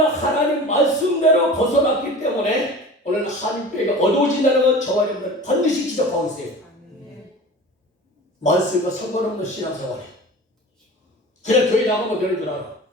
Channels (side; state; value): both; normal; correlation 0.37